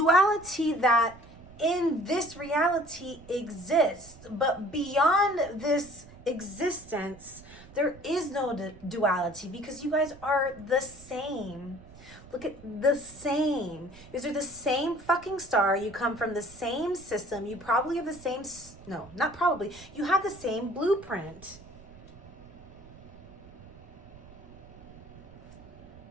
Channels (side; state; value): right; noise; rumble, 20 dB below the sound